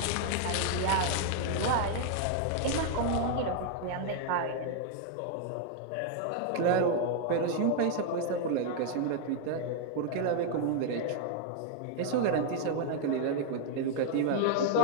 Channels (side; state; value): both; different; correlation 0.00